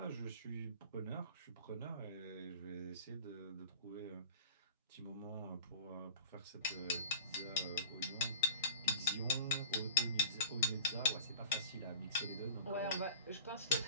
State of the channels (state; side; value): inverted; both; correlation -0.41